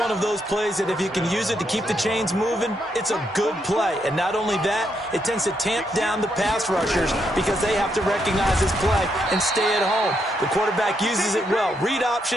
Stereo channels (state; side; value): normal; both; correlation 0.78